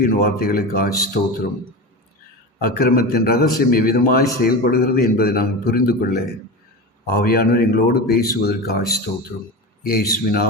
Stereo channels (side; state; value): both; normal; correlation 0.25